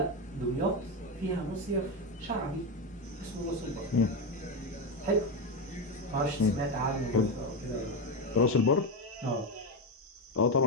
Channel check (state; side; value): normal; both; correlation 0.13